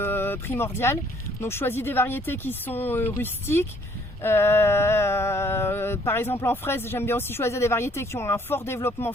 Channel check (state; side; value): normal; both; correlation 0.62